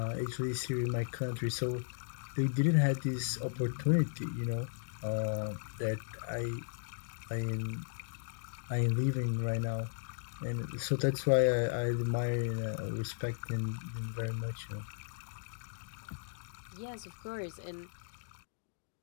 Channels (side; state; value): right; silent; digital silence